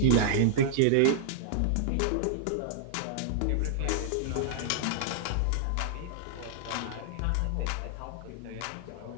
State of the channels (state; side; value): different; both; correlation -0.01